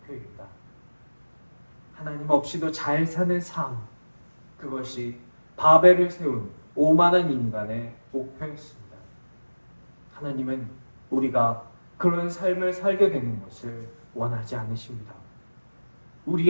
하나님 없이도 잘 사는 삶, 그것이 바벨을 세운 오만한 인간의 목표였습니다. 하나님은 우리가 그런 삶을 살게 되는 것을 원하지 않으십니다.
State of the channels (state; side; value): inverted; both; correlation -1.00